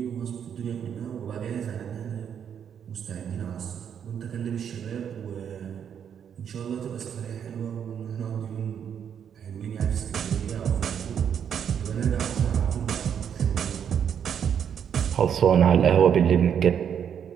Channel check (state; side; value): quieter; left; 8.3 dB